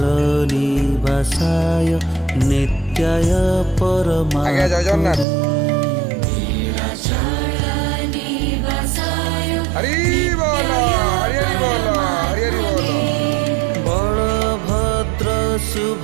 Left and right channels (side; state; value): left; drops out; at 5.2 s